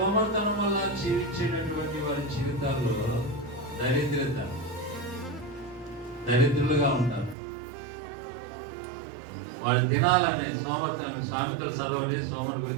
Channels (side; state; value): left; drops out; at 7.4 s